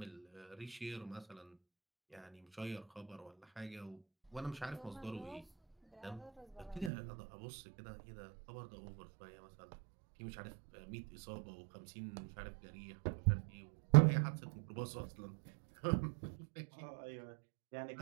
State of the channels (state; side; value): drops out; left; at 6.9 s